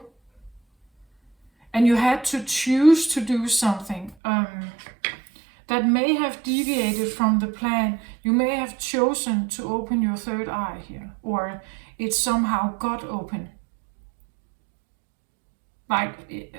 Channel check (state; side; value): drops out; left; at 4.2 s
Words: And you had to choose to do something that may have deviated from the plan. You may have chosen to open your third eye here, or it somehow got open. Like